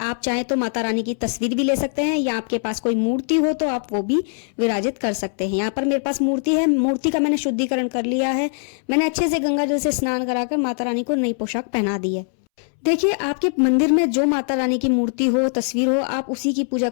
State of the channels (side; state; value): right; silent; 65 dB below the other